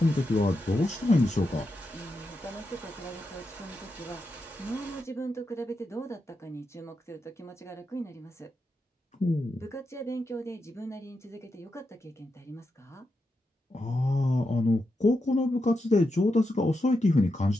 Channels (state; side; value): normal; both; correlation 0.86